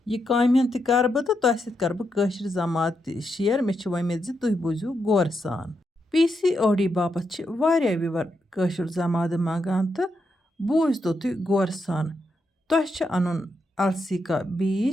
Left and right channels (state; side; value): normal; both; correlation 0.83